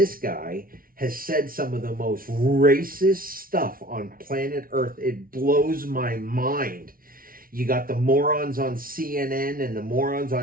guy has said some of the most racist stuff on planet Earth. It blows my mind. You got the morons on CNN and the morons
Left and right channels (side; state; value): left; late; 0.42 ms